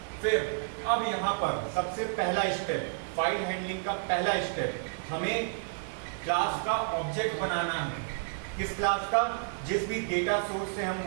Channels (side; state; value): left; silent; digital silence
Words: फिर अब यहाँ पर सबसे पहला स्टेप, फाइल हैंडलिंग का पहला स्टेप, हमें क्लास का ऑब्जेक्ट बनाना है। किस क्लास का? जिस भी डेटा सोर्स से हम